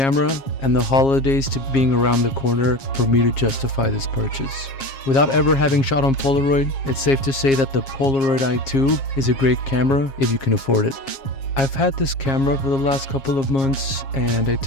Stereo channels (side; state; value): right; late; 7.4 ms